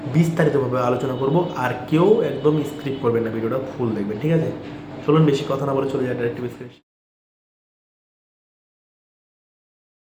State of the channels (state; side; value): identical; both; correlation 1.00